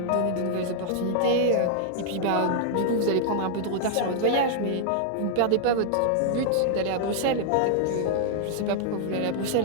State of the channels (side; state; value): both; different; correlation -0.01